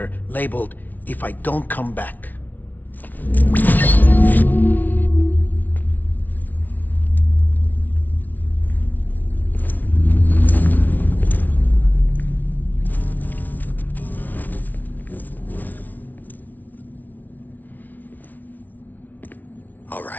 labeled, "If I don't come back." All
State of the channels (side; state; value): right; late; 0.080 ms